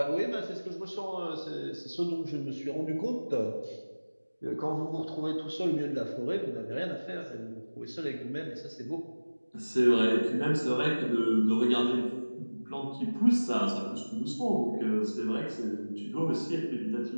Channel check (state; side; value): inverted; both; correlation -1.00